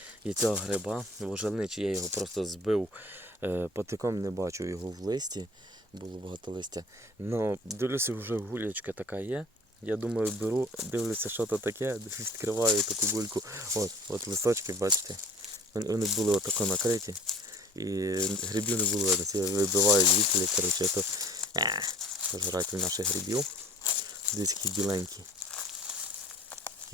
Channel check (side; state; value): both; normal; correlation 0.48